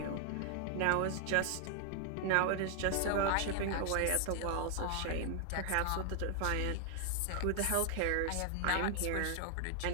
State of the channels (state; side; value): different; both; correlation 0.00